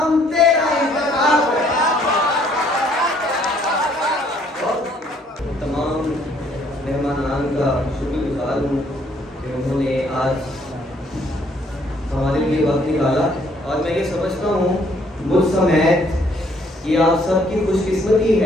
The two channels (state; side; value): normal; both; correlation 0.64